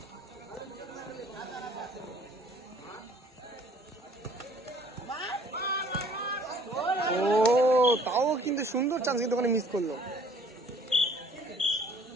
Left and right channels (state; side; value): normal; both; correlation 0.56